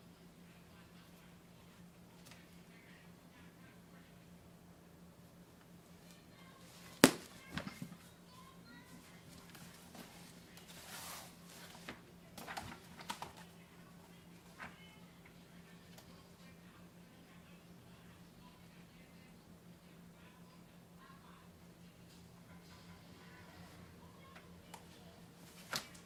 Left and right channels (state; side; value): identical; both; correlation 1.00